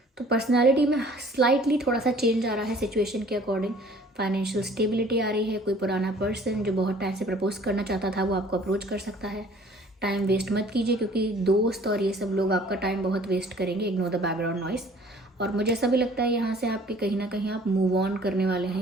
तो पर्सनालिटी में स्लाइटली थोड़ा सा चेंज आ रहा है सिचुएशन के अकॉर्डिंग। फाइनेंशियल स्टेबिलिटी आ रही है, कोई पुराना पर्सन जो बहुत टाइम से प्रपोज करना चाहता था वो आपको अप्रोच कर सकता है। टाइम वेस्ट मत कीजिए क्योंकि दोस्त और ये सब लोग आपका टाइम बहुत वेस्ट करेंगे। Ignore the background noise. और मुझे ऐसा भी लगता है यहाँ से आपके कहीं ना कहीं आप मूव ऑन करने वाले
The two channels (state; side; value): normal; both; correlation 0.52